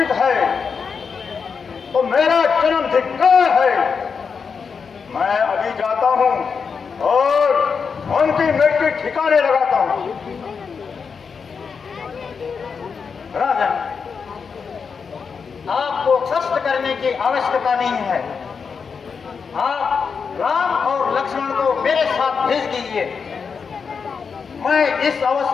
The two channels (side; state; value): right; quieter; 5.8 dB